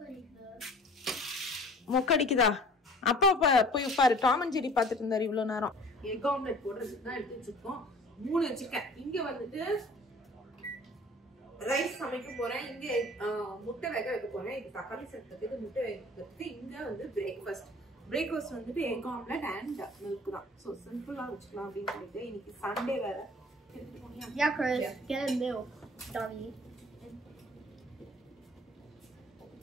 மொக்கடிக்குதா? அப்பா போய் பாரு, டாம் அண்ட் ஜெரி பார்த்துட்டு இருந்தாரு இவ்வளவு நேரம். எக் ஆம்லெட் போடுறதுக்கு தான் எடுத்து வச்சிருக்கோம். 3 வச்சிருக்கேன். இங்க வந்துட்டு ரைஸ் சமைக்க போறேன், இங்க முட்டை வேக வைக்க போறேன். இது தக்காளி சேர்த்துக்கு, முட்டை வைக்கிறதுக்கு. இங்க வந்து பிரேக்ஃபாஸ்ட் வந்துட்டு எக் ஆம்லெட் அண்ட் மில்க் தான். ஸோ சிம்பிளா வச்சுக்கலாம் அப்படின்னு சொல்லிட்டு. இன்னைக்கு சண்டே வேற. Yeah, Chris, get a milk, dummy.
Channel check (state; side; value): normal; both; correlation 0.48